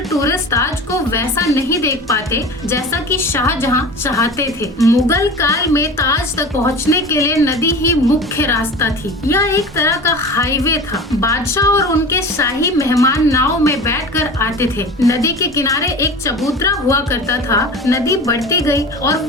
टूरिस्ट ताज को वैसा नहीं देख पाते जैसा कि शाहजहां चाहते थे। मुगल काल में ताज तक पहुंचने के लिए नदी ही मुख्य रास्ता थी। यह एक तरह का हाईवे था। बादशाह और उनके शाही मेहमान नाव में बैठकर आते थे। नदी के किनारे एक चबूतरा हुआ करता था। नदी बढ़ती गई और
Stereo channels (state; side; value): normal; both; correlation 0.34